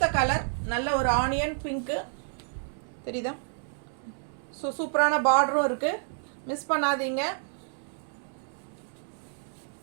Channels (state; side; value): silent; left; digital silence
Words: கலர் நல்ல ஒரு ஆனியன் பிங்க்கு தெரியுதா? ஸோ சூப்பரான பார்டரும் இருக்குது. மிஸ் பண்ணாதீங்க.